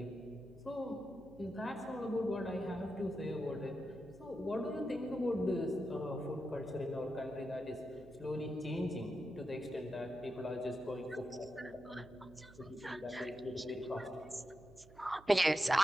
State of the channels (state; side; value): noise; right; hum, 22 dB below the sound